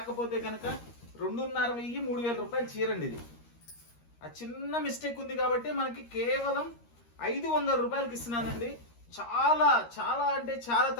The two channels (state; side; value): late; right; 13 ms